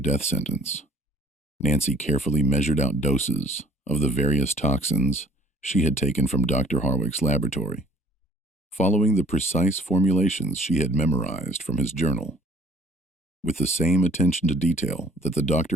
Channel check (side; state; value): both; normal; correlation 0.54